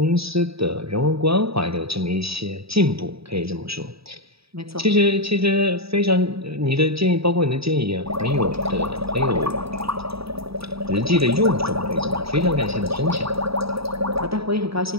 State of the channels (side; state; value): left; late; 0.77 ms